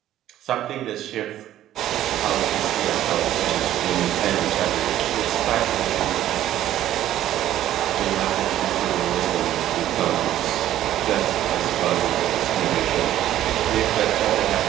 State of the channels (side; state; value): left; quieter; 12.6 dB